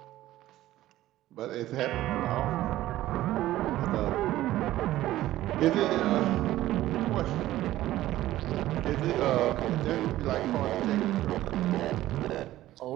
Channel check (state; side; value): quieter; left; 14.9 dB